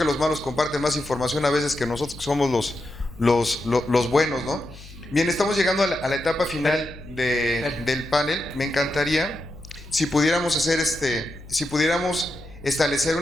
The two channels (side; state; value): left; noise; hum, 18 dB below the sound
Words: los malos comparten más información a veces que nosotros que somos los buenos, ¿no? Bien, estamos llegando a la etapa final del panel. Me encantaría si pudiéramos hacer si pudiéramos establecer